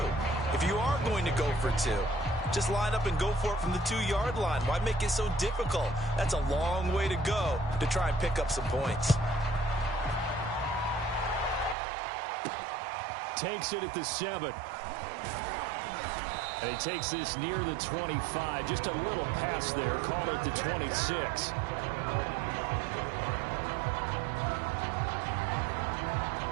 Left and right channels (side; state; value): left; drops out; at 11.8 s